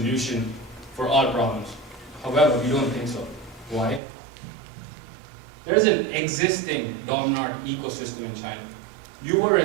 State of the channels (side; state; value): left; drops out; at 4.0 s